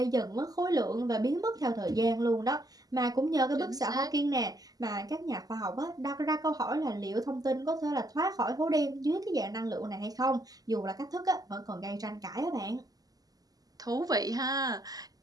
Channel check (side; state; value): left; late; 0.18 ms